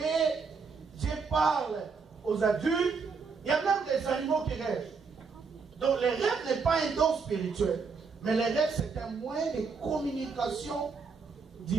Dieu parle aux adultes. Il y a même des animaux qui rêvent. Donc les rêves n'est pas un don spirituel. Mais les rêves, c'est un moyen de communication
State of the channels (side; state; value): left; quieter; 5.1 dB